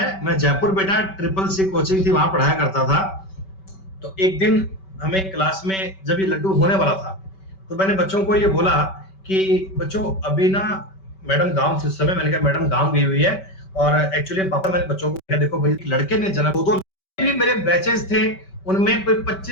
मैं जयपुर बेटा CCC कोचिंग थी वहां पढ़ाया करता था, तो एक दिन हमें क्लास में जब ये लड्डू होने वाला था तो मैंने बच्चों को ये बोला कि बच्चों अभी ना मैडम गांव से, उस समय मैंने कहा मैडम गांव गई हुई है, और एक्चुअली पापा मैंने बच्चों को कहा देखो भाई लड़के ने जन्म, दो भी मेरे बैचेस थे उनमें कोई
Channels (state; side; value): late; right; 5.2 ms